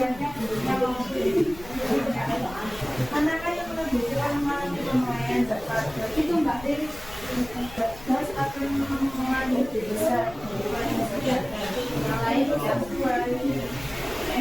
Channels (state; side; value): noise; left; rumble, 18 dB below the sound